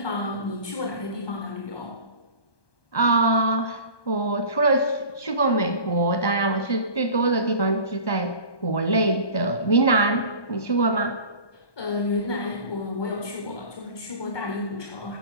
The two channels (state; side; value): late; right; 1.2 ms